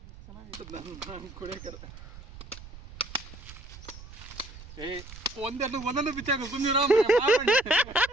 ಚೆನ್ನಾಗಿ ಕುಡಿಯಕರ. ಒಂದೊಂದು ಬಿಚ್ಚಾಕ ಸುಮ್ಮನೆ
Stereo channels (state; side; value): noise; right; rumble, 16 dB below the sound